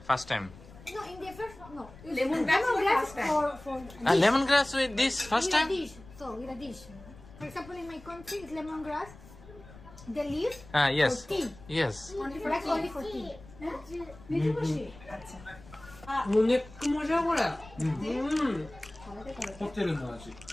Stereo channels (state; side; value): noise; left; rumble, 20 dB below the sound